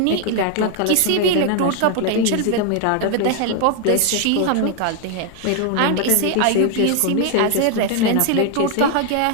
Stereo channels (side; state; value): both; different; correlation 0.00